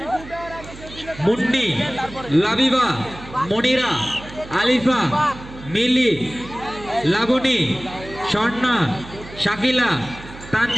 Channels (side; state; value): right; noise; hum, 16 dB below the sound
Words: মুন্নি, লাবিবা, মনিরা, আলিফা, মিলি, লাবণী, স্বর্ণা, শাকিলা,